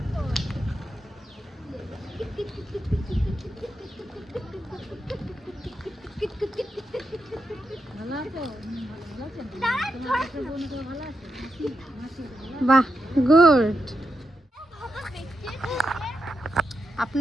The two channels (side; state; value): both; normal; correlation 0.86